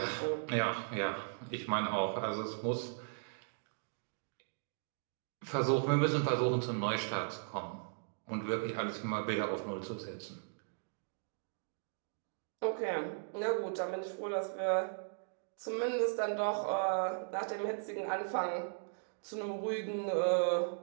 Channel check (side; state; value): left; silent; digital silence